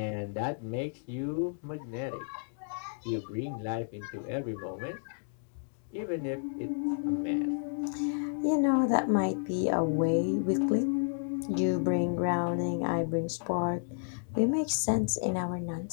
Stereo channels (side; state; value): right; silent; digital silence